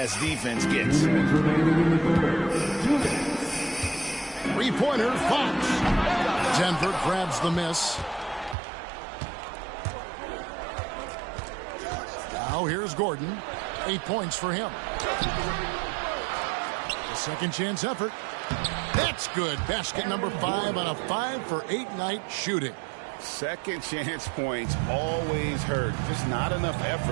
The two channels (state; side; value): drops out; left; at 8.6 s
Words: defense gets. Three-pointer, Fox. Denver grabs the miss. Now here's Gordon. 8 points for him. A second chance effort. That's good. Basket number 5 on a 5-for-8 night shooting. Second chance points always hurt. Just not enough